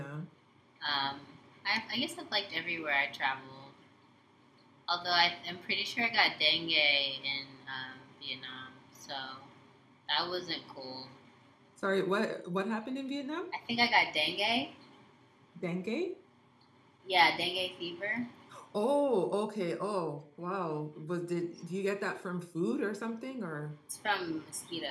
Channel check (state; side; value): identical; both; correlation 1.00